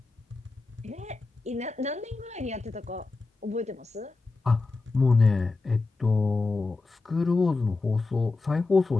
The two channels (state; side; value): quieter; right; 3.7 dB